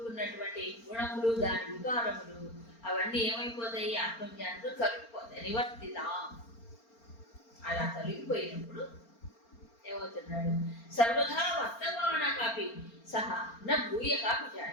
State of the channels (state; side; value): late; right; 4.4 ms